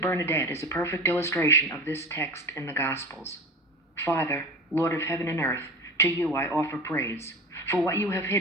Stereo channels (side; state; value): both; normal; correlation 0.33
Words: Bernadette is a perfect illustration of this text in the Gospels. Father, Lord of heaven and earth, to you I offer praise. For what you have